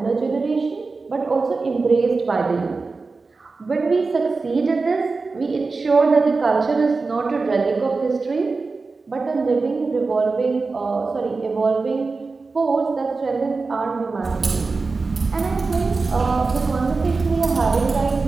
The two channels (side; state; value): left; quieter; 4.0 dB